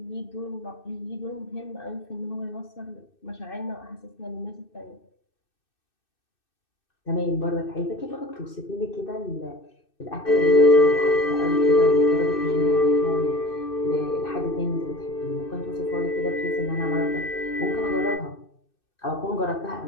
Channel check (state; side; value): late; right; 2.6 ms